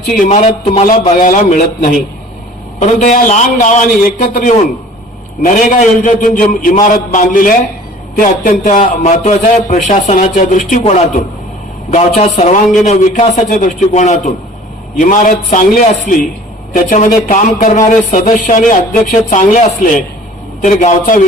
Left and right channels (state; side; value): normal; both; correlation 0.47